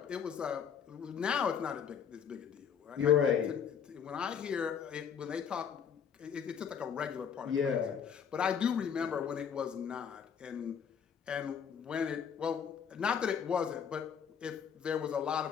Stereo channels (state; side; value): quieter; right; 7.5 dB